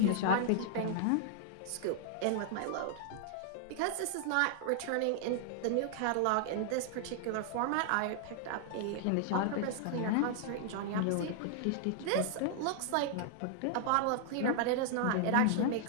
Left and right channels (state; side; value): different; both; correlation -0.01